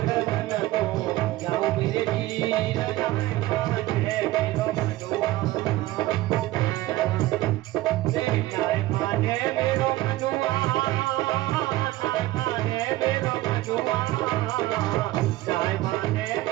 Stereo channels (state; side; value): quieter; left; 17.1 dB